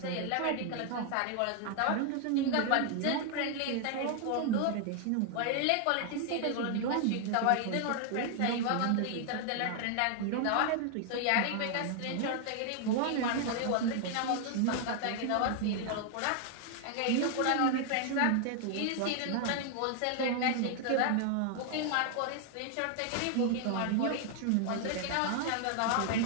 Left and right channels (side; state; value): both; different; correlation 0.00